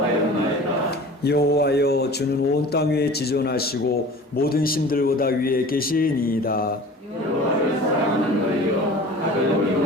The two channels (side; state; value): both; normal; correlation 0.41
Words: 여호와여 주는 온 땅 위에 지존하시고 모든 신들보다 위에 계시니이다. 여호와를 사랑하는 너희여 가벼운